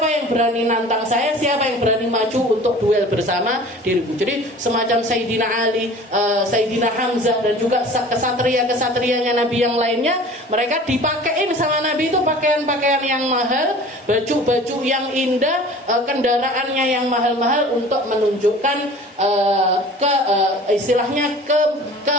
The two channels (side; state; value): both; normal; correlation 0.44